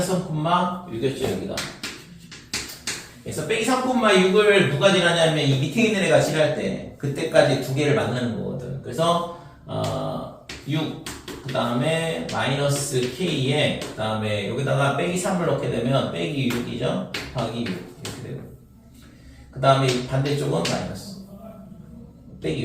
3,6이었죠 여기가. 그래서 빼기 3,6을 누가 지나냐면 이 밑에 있는 애가 지날 때 그때까지 두 개를 만나는 거거든. 그래서 6, 그 다음에 마이너스 k에 그 다음에 여기다가 빼기 3을 넣게 되면 빼기 6이죠. 더하기 6 이렇게 되고. 그 다음에 반대쪽은 마이너스 빼기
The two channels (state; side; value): identical; both; correlation 1.00